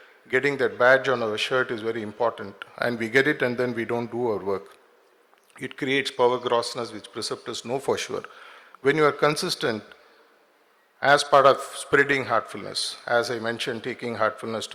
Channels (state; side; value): identical; both; correlation 1.00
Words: getting that badge on our shirt is very important, and we get it and then we don't do our work. It creates power grossness, which preceptors know for sure. When you are consistent as part of spreading heartfulness, as I mentioned, taking heartfulness